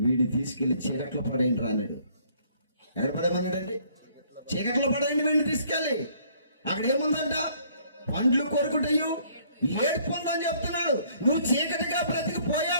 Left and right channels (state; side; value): inverted; both; correlation -0.62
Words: వీడిని తీసుకెళ్లి చీకట్లో పడేయండి రా అన్నాడు. ఎక్కడ పడేయమన్నాడండి? చీకట్లో పడేయండి వీడిని తీసుకెళ్ళి. అక్కడ ఏముందంట? పండ్లు కొరుకుటయు ఏడుపు ఉందని చెప్తున్నాడు. నువ్వు చీకటిగా